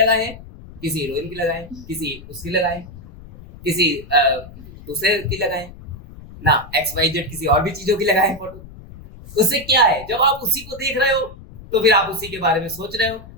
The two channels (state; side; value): noise; left; rumble, 17 dB below the sound